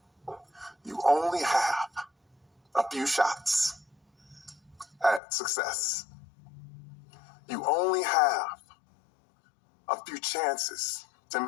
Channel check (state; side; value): drops out; right; at 5.2 s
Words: You only have a few shots at success. You only have a few chances to